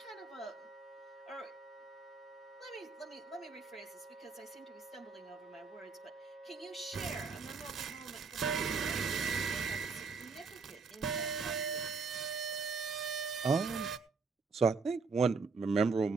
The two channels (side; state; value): left; quieter; 4.7 dB